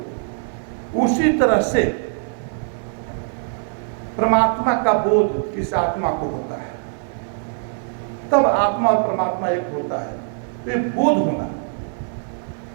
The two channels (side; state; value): left; silent; digital silence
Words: उसी तरह से परमात्मा का बोध इस आत्मा को होता है, तब आत्मा और परमात्मा एक होता है। तो ये बोध होना,